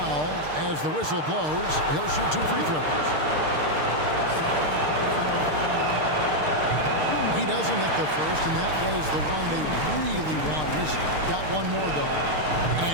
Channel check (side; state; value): left; late; 6.6 ms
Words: as the whistle blows. He'll shoot 2 free throws. He doesn't hit the first, and that was the one they really wanted. He's got one more, though,